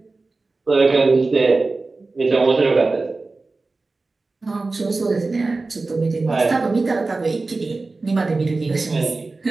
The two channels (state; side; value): quieter; left; 3.6 dB